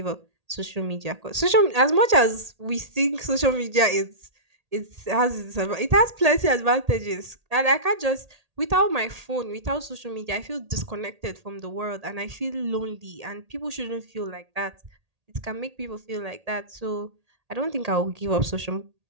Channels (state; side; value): late; left; 1.8 ms